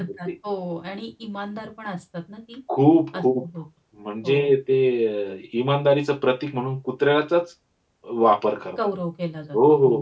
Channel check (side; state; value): both; identical; correlation 1.00